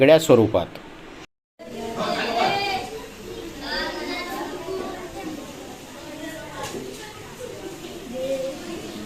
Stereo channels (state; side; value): identical; both; correlation 1.00